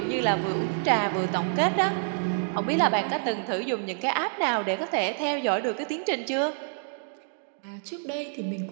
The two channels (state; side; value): silent; left; 57 dB below the other